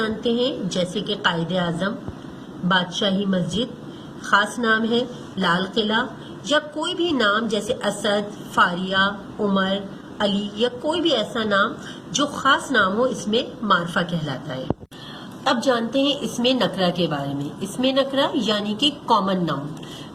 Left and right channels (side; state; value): both; identical; correlation 1.00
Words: ہیں جیسے کہ قائد اعظم، بادشاہی مسجد. خاص نام ہے لال قلعہ، یا کوئی بھی نام جیسے اسد، فاریہ، عمر، علی، یا کوئی بھی ایسا نام جو خاص نام ہو اسم معرفہ کہلاتا ہے. اب جانتے ہیں اسم نکرہ کے بارے میں. اسم نکرہ یعنی کہ کامن ناؤن،